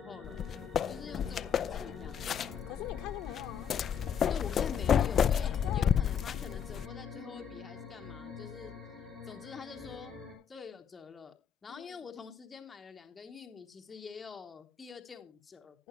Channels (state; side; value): quieter; right; 8.0 dB